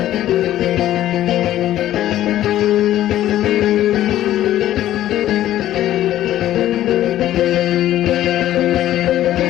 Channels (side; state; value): right; quieter; 13.1 dB